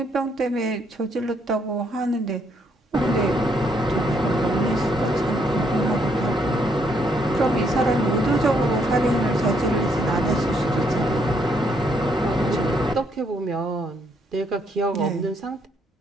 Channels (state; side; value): normal; both; correlation 0.72